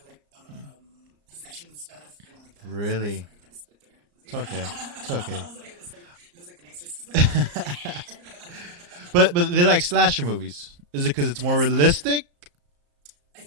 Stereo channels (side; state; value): left; late; 34 ms